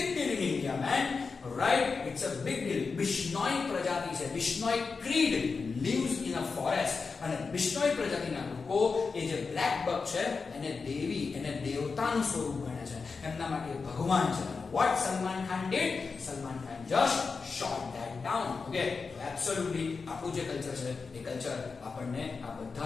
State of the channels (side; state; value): right; quieter; 4.7 dB